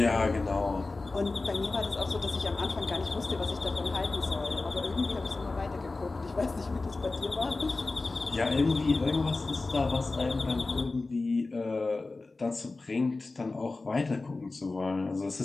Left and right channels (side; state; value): right; quieter; 3.5 dB